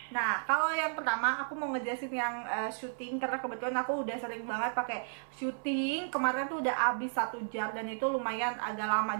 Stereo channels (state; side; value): silent; left; 55 dB below the other